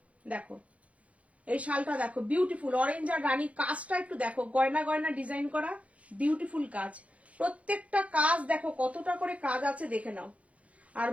দেখো এই শালটা দেখো, বিউটিফুল অরেঞ্জ আর রানী। কাজটা একটু দেখো, গয়না গয়না ডিজাইন করা, বিউটিফুল কাজ। প্রত্যেকটা কাজ দেখো কতটা করে কাজ আছে, দেখে নাও। আর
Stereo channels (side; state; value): left; late; 0.065 ms